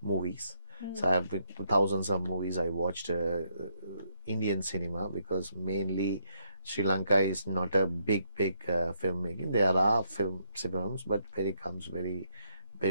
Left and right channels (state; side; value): inverted; both; correlation -0.75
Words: movies. So I have been to thousands of movies. I watched Indian cinema, because mainly Sri Lanka is not a big filmmaking. There are films, but